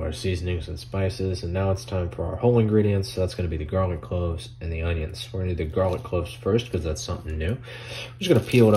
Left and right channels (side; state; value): both; identical; correlation 1.00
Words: our seasonings and spices, and now it's time for our whole ingredients. So that's gonna be the garlic cloves and the onions. We're gonna do the garlic cloves first because that's something new. I'm just gonna peel it